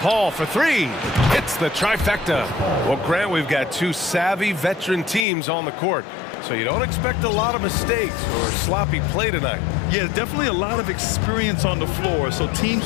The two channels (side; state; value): right; drops out; at 5.2 s